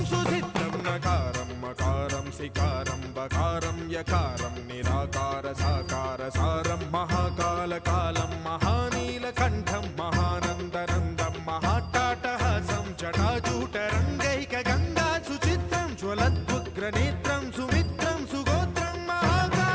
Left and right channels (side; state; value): both; identical; correlation 1.00